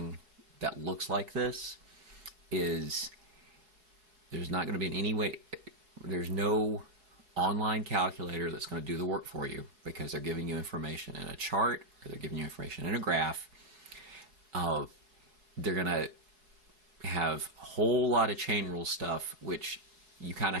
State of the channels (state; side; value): late; left; 4.7 ms